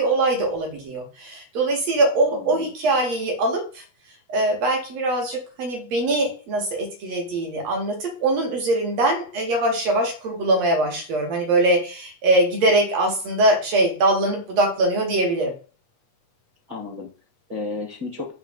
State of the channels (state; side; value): late; left; 8.3 ms